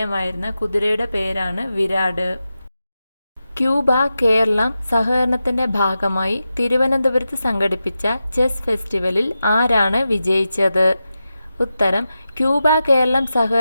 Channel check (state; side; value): inverted; both; correlation -0.91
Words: കുതിരയുടെ പേരാണ് വിരാട്. ക്യൂബ കേരളം സഹകരണത്തിൻ്റെ ഭാഗമായി തിരുവനന്തപുരത്ത് സംഘടിപ്പിച്ച ചെസ് ഫെസ്റ്റിവലിൽ ആരാണ് വിജയിച്ചത്? ഉത്തരം: ക്യൂബ കേരളം